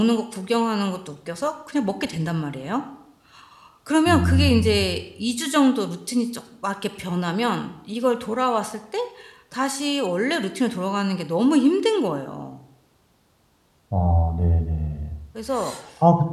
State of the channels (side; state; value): both; identical; correlation 1.00